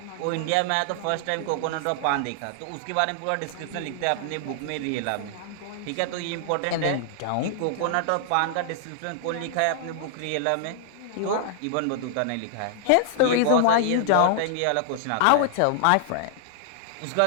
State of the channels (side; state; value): both; different; correlation -0.01